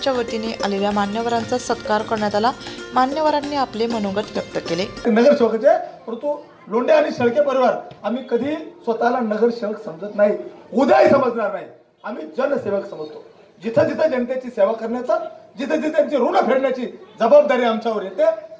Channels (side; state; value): both; identical; correlation 1.00